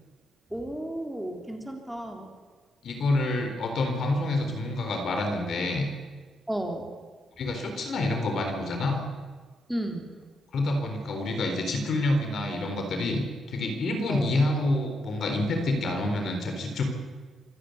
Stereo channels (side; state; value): both; normal; correlation 0.80